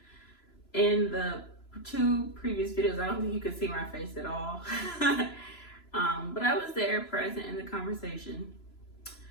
In the two previous videos, I don't think you could see my face at all. But I was there, present in the conversation.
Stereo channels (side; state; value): right; late; 3.0 ms